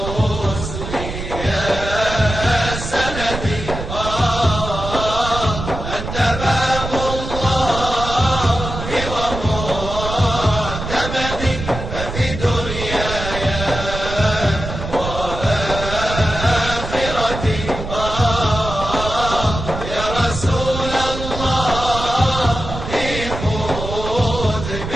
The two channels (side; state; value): right; noise; rumble, 7 dB below the sound